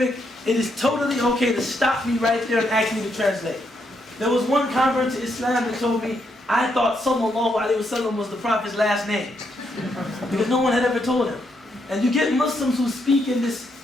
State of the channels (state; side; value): normal; both; correlation 0.78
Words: it is totally okay to stop me right there and ask me to translate. There was one convert to Islam that told me, I thought sallallahu alaihi wasallam was the Prophet's last name. Because no one had ever told him. And you get Muslims who speak in this